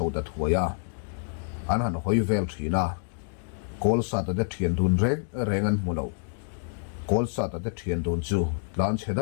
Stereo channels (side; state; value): right; silent; digital silence